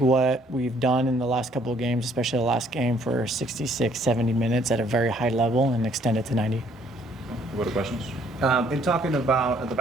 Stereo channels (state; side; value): normal; both; correlation 0.63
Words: we've done in the last couple of games, especially the last game, for 66, 70 minutes at a very high level and extend it to 90. What are questions? In talking about the